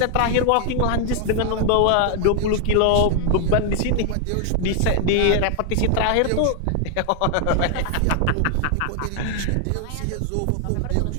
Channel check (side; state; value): both; different; correlation 0.00